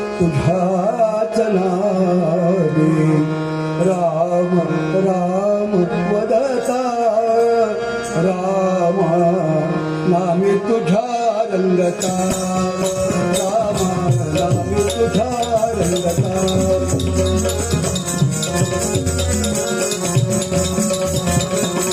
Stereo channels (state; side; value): identical; both; correlation 1.00